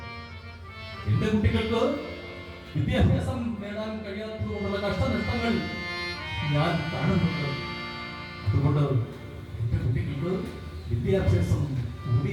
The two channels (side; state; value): both; identical; correlation 1.00